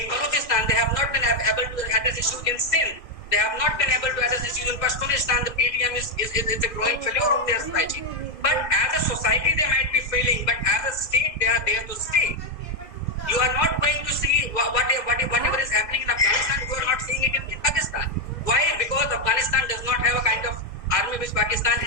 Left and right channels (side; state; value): right; late; 2.0 ms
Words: Balochistan. They have not been able to address issues in Sindh. They have not been able to address issues in Pashtunistan. The PTM is a growing failure of their society. But as a society, they might be failing. But as a state, they are there to stay. You are not going to see whatever is happening in Afghanistan. You are not seeing it in Pakistan. Why? Because Afghanistan does not have a kind of army which Pakistan